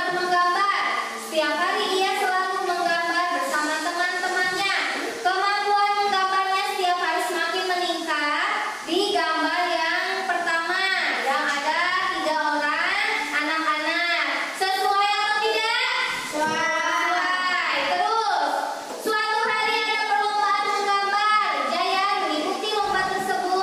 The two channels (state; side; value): identical; both; correlation 1.00